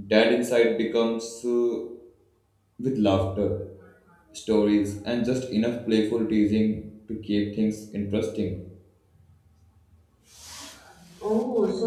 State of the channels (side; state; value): both; identical; correlation 1.00